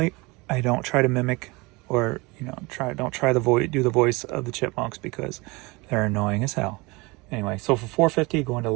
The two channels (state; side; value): quieter; left; 24.9 dB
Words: I don't try to mimic or, don't try to do the voice of the Chipmunks because they're annoying as hell. Anyway, so for $4.50, going to